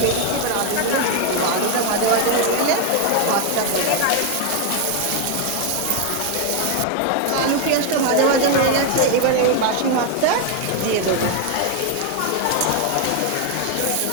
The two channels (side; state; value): both; different; correlation 0.01